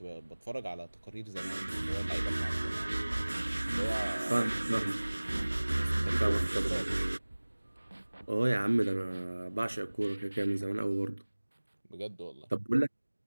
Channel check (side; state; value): both; inverted; correlation -1.00